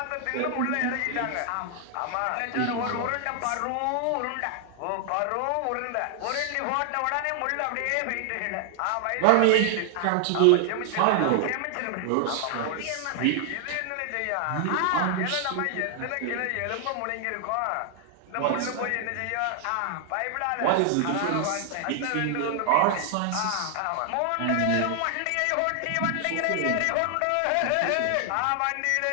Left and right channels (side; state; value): both; different; correlation 0.00